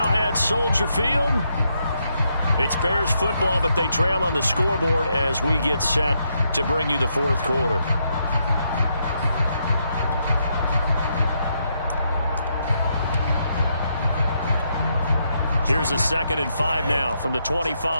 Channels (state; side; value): inverted; both; correlation -0.79